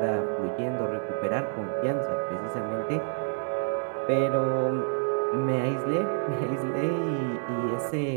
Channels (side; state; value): left; silent; digital silence